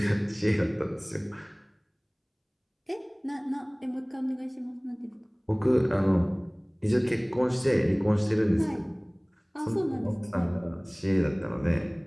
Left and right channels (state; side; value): identical; both; correlation 1.00